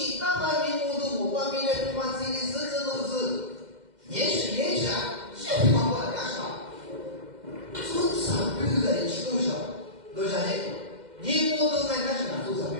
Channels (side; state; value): left; late; 2.1 ms